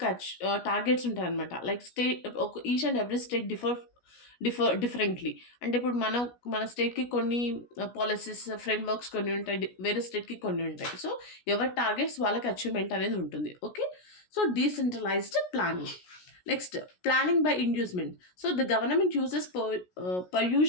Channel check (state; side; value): late; right; 17 ms